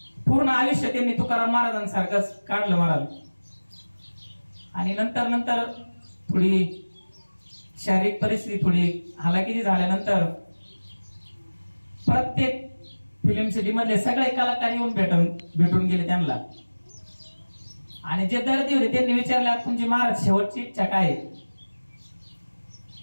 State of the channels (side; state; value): both; inverted; correlation -1.00